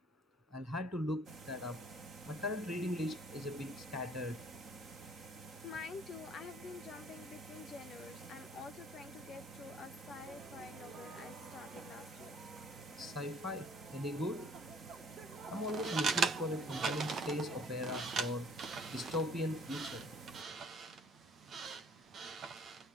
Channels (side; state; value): both; normal; correlation 0.58